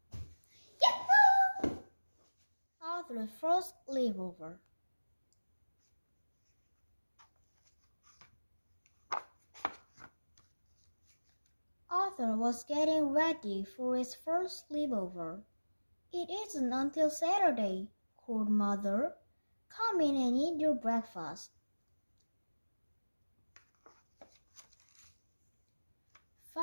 야호! Author's First Sleepover. Arthur was getting ready for his first sleepover. It isn't until Saturday, called Mother. Come in and eat your breakfast.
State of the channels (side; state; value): both; inverted; correlation -1.00